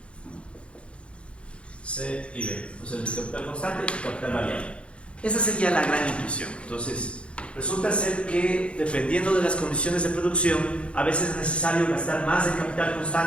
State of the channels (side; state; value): right; late; 0.059 ms